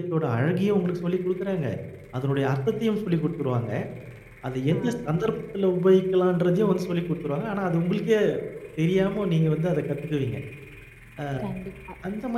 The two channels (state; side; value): identical; both; correlation 1.00